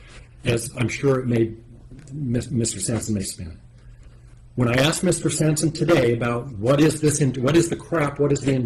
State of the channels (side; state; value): both; identical; correlation 1.00